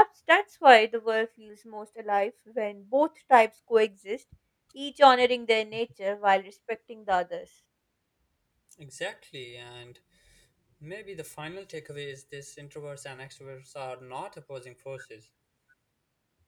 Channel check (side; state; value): both; identical; correlation 1.00